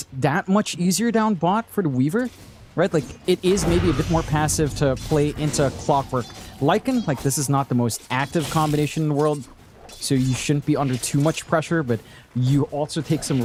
that much easier down bot for the Weaver, right? Like, it is maybe a bit more passive to play into Clockwork Lycan. Like, this is not the most active combination in the world, so you shouldn't be under too much pressure, but you also take some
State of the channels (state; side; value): identical; both; correlation 1.00